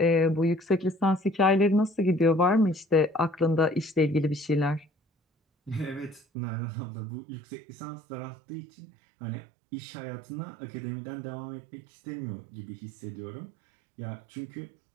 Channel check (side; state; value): left; drops out; at 6.2 s